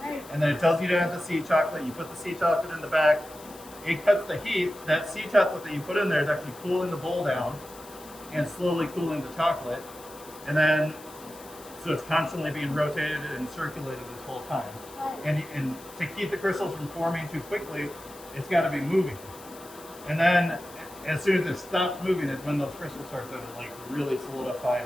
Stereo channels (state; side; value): noise; left; hiss, 20 dB below the sound